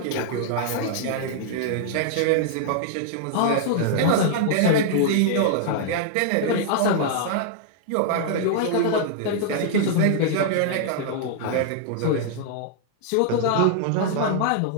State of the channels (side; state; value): both; different; correlation -0.01